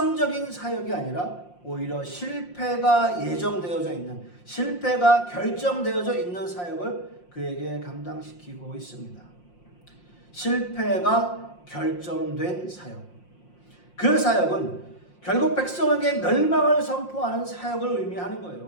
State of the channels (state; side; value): late; right; 5.6 ms